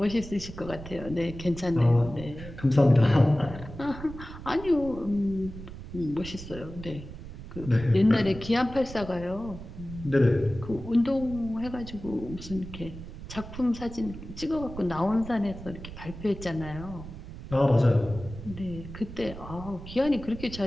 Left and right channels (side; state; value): right; noise; rumble, 12 dB below the sound